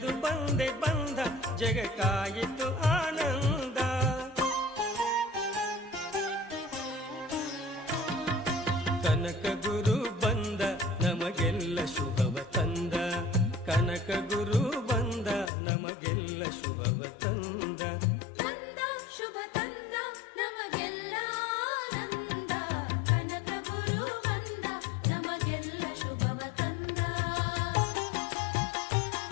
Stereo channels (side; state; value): right; drops out; at 15.5 s